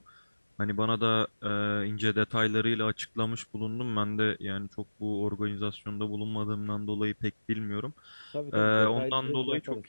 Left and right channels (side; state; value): both; inverted; correlation -1.00